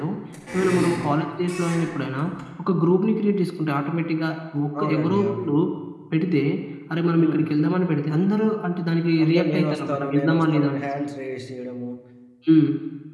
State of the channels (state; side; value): identical; both; correlation 1.00